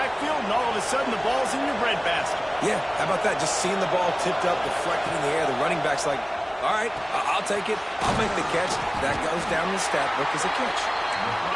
and all of a sudden the ball's in your breadbasket. Yeah, how about that? Just seeing the ball tipped up, deflected in the air. The running back's like, all right, I'll take it. I'll make the catch. That goes down the stat book as a catch.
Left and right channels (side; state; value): both; identical; correlation 1.00